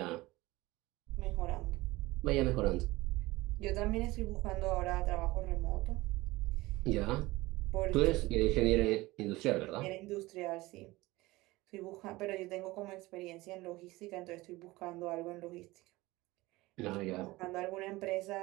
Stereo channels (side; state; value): left; quieter; 20.0 dB